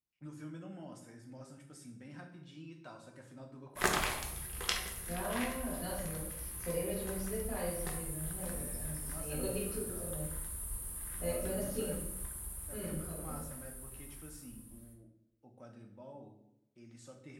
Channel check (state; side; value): identical; both; correlation 1.00